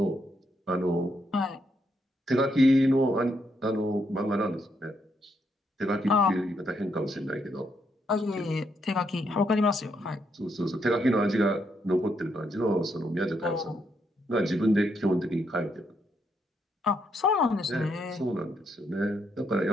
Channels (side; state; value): both; normal; correlation 0.77